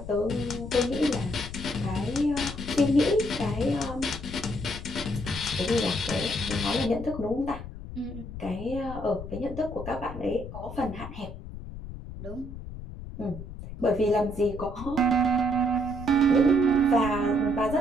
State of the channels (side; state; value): left; noise; rumble, 11 dB below the sound